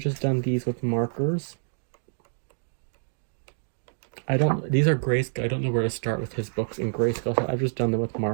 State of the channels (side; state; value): left; silent; digital silence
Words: just done these with markers. These are grayscale. I don't know where to start with his books in grayscale, so I've just done them with